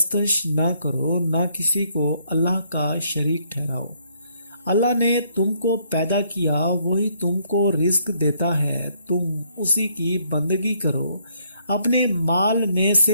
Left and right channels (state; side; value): inverted; both; correlation -0.69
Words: نہ کرو، نہ کسی کو اللہ کا شریک ٹھہراؤ۔ اللہ نے تم کو پیدا کیا، وہی تم کو رزق دیتا ہے، تم اسی کی بندگی کرو، اپنے مال میں